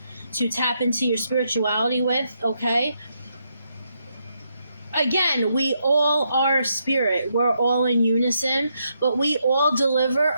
to tap into your spirituality with, okay? Again, we all are spirit. We're all in unison, but we all deliver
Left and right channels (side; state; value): both; inverted; correlation -0.79